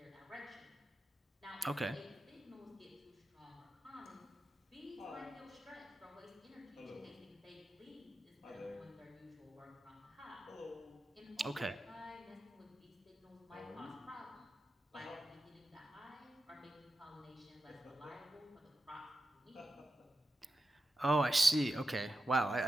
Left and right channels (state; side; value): normal; both; correlation 0.91